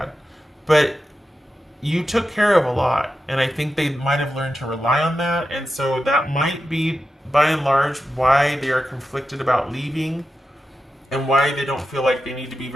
but you took care of a lot, and I think they might have learned to rely on that, and so that might be, by and large, why they are conflicted about leaving, and why they don't feel like they need to be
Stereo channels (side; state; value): both; normal; correlation 0.90